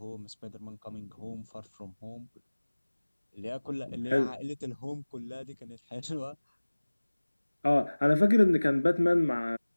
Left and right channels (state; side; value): inverted; both; correlation -1.00